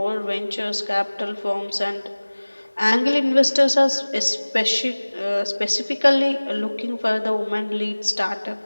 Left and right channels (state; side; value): inverted; both; correlation -1.00